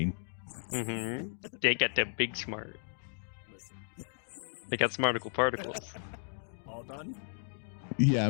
They got them big smart. Listen. They got smarticle particles. All done? Yeah,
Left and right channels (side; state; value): right; silent; digital silence